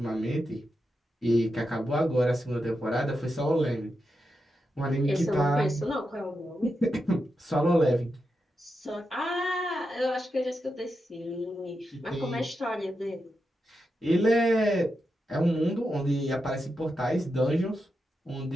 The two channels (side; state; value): both; normal; correlation 0.87